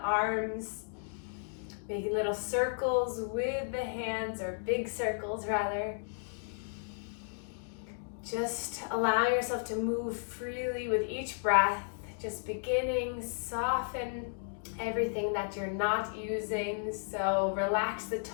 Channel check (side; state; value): right; silent; digital silence